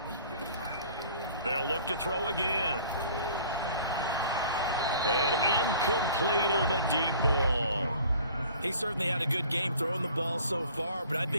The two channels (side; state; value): both; inverted; correlation -0.50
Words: They'll look to throw again. And incomplete on the deep ball. He certainly had a good game throwing the ball so far, but I